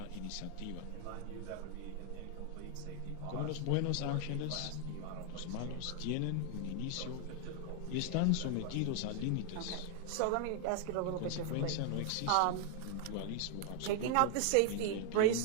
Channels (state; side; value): different; both; correlation 0.00